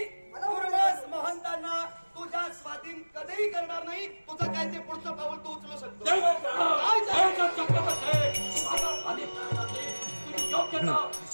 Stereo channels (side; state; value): both; inverted; correlation -1.00